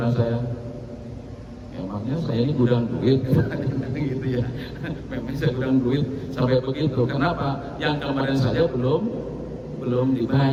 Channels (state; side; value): identical; both; correlation 1.00